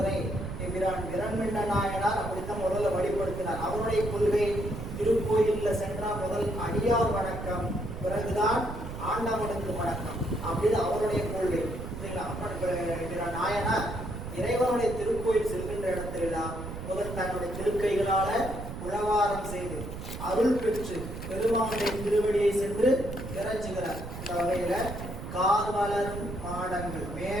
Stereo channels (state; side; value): noise; right; rumble, 8 dB below the sound